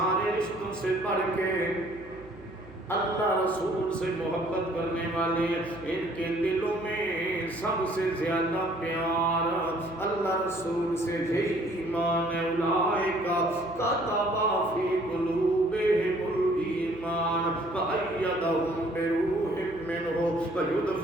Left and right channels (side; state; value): right; noise; hum, 20 dB below the sound